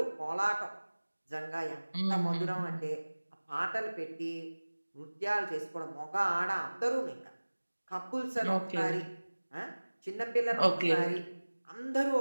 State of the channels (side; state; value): both; inverted; correlation -1.00